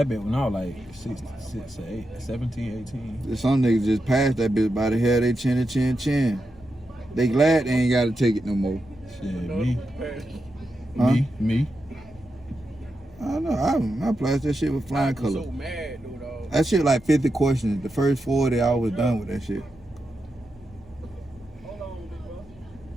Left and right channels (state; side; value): normal; both; correlation 0.88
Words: bit when I was like 17, 18. Some niggas just passed that bitch by the hair. They chin. They glad they ain't got to take it no more. Shit, No, me. Huh? Me. I don't know. I passed that shit with flying I'm color. so mad, dude, dog. That shit like 50 questions. The first 40, I was done with that shit. Hold on, big bro.